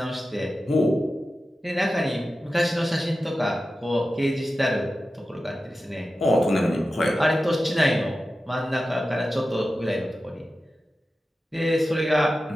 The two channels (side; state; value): both; normal; correlation 0.93